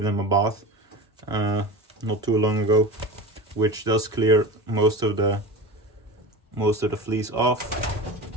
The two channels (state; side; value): normal; both; correlation 0.30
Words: them a bath not too long ago, which does clear most of the fleas off.